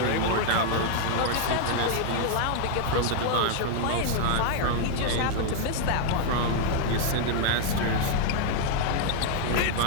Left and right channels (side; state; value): both; different; correlation 0.00